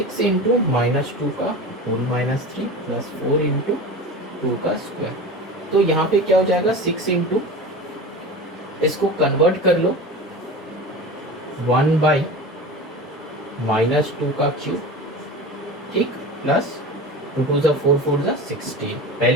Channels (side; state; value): both; normal; correlation 0.31